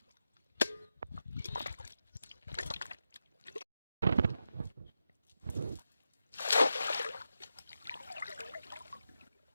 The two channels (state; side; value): inverted; both; correlation -0.88